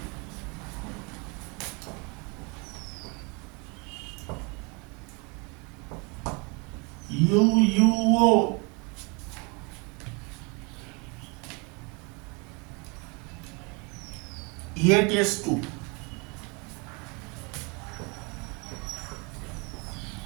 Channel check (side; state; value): left; quieter; 30.6 dB